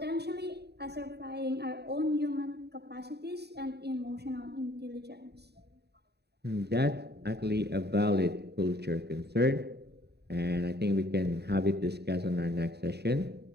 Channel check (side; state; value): left; late; 0.48 ms